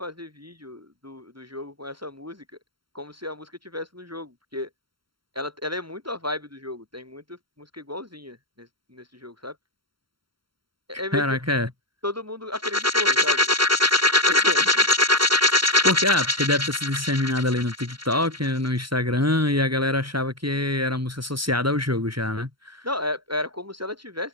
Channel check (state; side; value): late; left; 0.73 ms